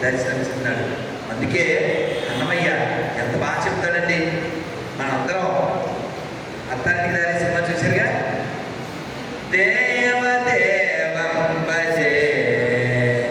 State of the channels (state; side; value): identical; both; correlation 1.00